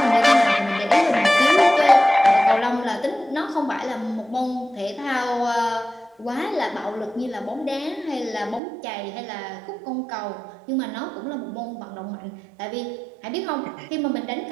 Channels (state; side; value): drops out; left; at 8.6 s